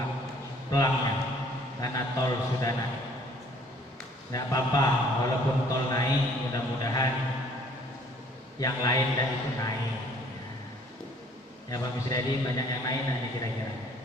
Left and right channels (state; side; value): normal; both; correlation 0.57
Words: pelangnya karena tol sudah naik. Tidak apa-apa, walaupun tol naik, mudah-mudahan yang lain tidak ikut naik. Ya Pak Misdadi, banyak yang naik nanti kira-kira.